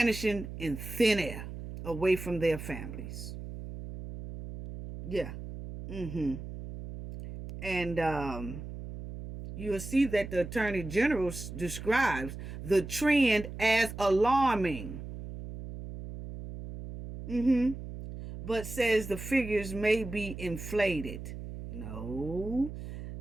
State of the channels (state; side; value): noise; right; hum, 10 dB below the sound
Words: in thin air, away from their families. Yeah. And you'll see that the Attorney General describes the trend as alarming. But says the figures may be inflated. No.